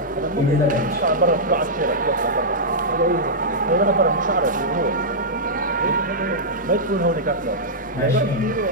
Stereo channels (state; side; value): normal; both; correlation -0.10